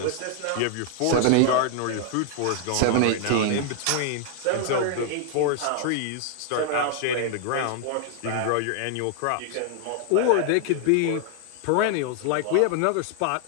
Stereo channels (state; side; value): different; both; correlation 0.00